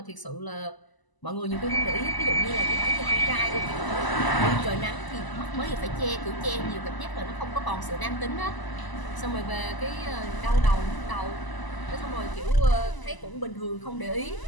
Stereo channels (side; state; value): right; late; 1.0 ms